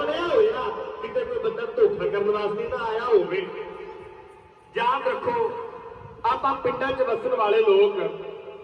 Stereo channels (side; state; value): both; identical; correlation 1.00